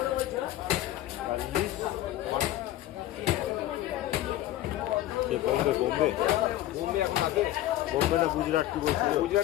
বোম্বে বোম্বে বোম্বে এখন আছে। বোম্বে না গুজরাট কি বলছিল?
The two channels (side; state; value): right; quieter; 14.4 dB